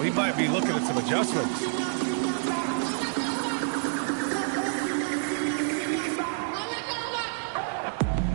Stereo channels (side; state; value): left; silent; digital silence